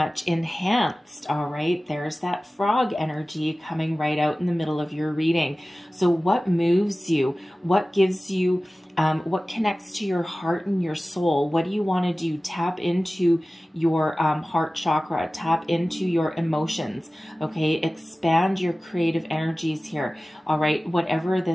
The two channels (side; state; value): both; normal; correlation 0.97